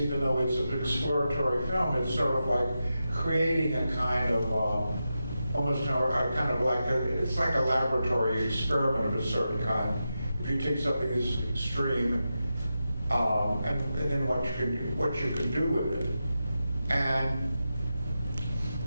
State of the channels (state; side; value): inverted; both; correlation -0.89